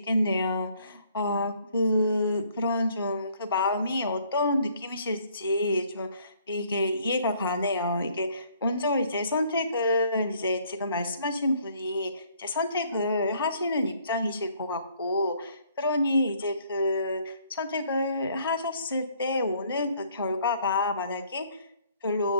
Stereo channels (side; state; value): both; inverted; correlation -0.63